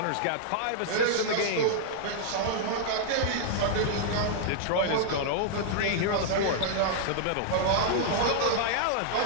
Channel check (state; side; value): different; both; correlation -0.01